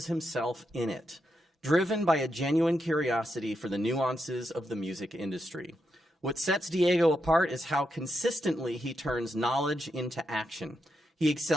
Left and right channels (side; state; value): both; normal; correlation 0.83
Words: himself in it, driven by a genuine curiosity for the nuances of the music industry. What sets Diego apart is how consistently he turns knowledge into action. He